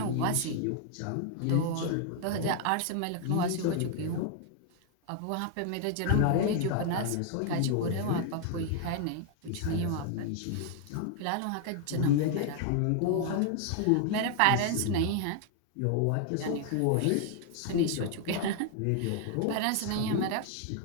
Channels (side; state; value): both; different; correlation 0.00